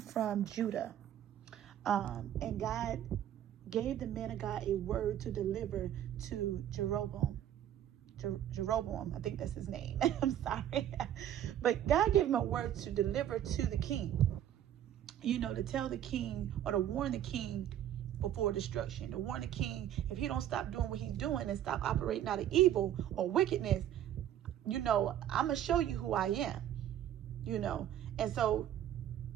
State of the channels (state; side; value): quieter; left; 11.0 dB